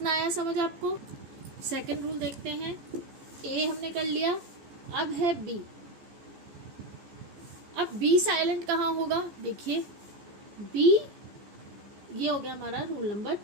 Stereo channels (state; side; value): late; left; 14 ms